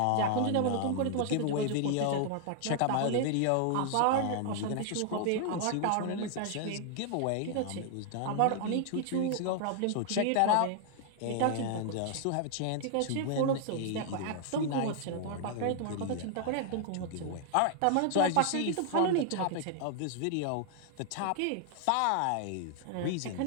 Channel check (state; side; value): different; both; correlation 0.00